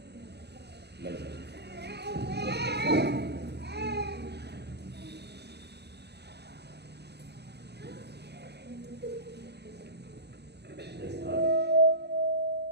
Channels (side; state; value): left; late; 0.49 ms